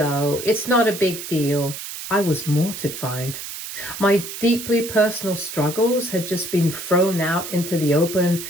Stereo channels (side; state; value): right; noise; hiss, 9 dB below the sound